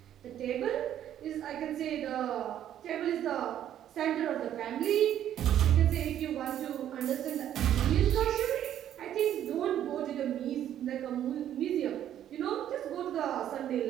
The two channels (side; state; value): left; quieter; 10.9 dB